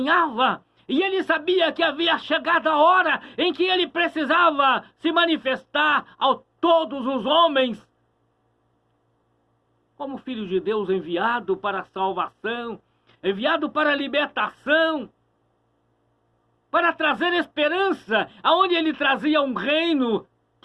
e ele sabia que havia chegado a hora em que ele precisava se manifestar a todos os homens como Filho de Deus, enviado para a salvação, enviado para a libertação, para trazer esperança, aonde ele trazia um reino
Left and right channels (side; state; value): both; identical; correlation 1.00